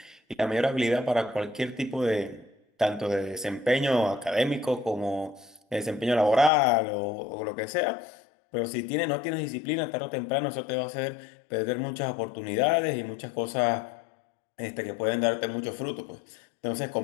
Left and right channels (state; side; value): drops out; right; at 6.5 s